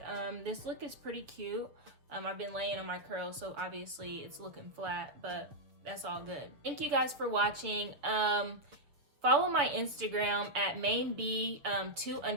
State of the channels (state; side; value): late; left; 6.9 ms